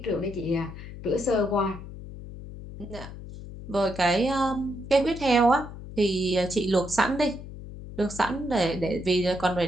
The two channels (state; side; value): noise; left; hum, 12 dB below the sound